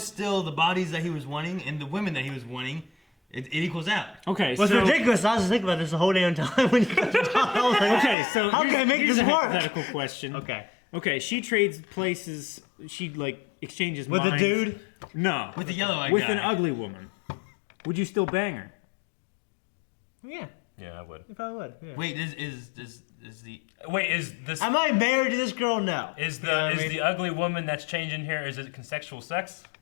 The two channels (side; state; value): right; drops out; at 8.2 s